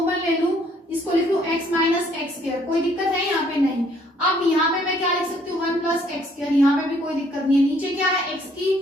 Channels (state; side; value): normal; both; correlation 0.64